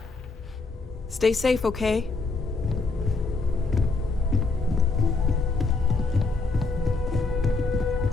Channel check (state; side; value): quieter; right; 3.7 dB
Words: Stay safe, okay?